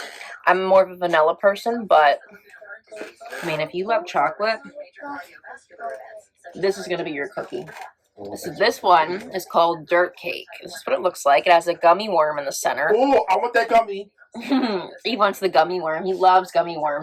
I'm more of a vanilla person, but I mean, if you love chocolate, this is going to be your cookie. So this one is called Dirt Cake. This is what it looks like. It has a gummy worm in the center. Oh, I want that gummy. He wants the gummy worm. He loves gummy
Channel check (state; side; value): identical; both; correlation 1.00